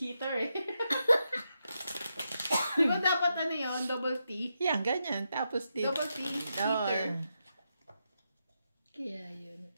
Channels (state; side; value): inverted; both; correlation -0.84